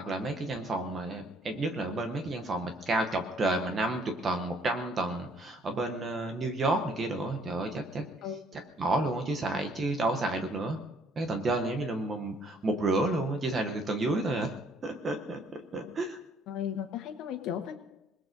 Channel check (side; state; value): both; normal; correlation 0.62